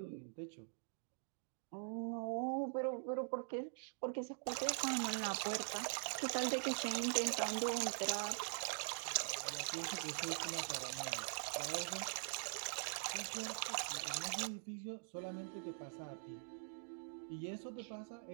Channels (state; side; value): silent; left; digital silence